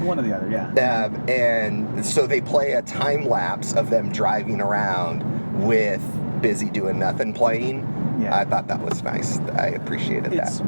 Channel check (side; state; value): both; inverted; correlation -1.00